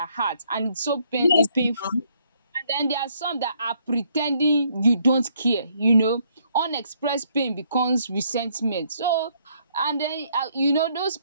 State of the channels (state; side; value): inverted; both; correlation -0.69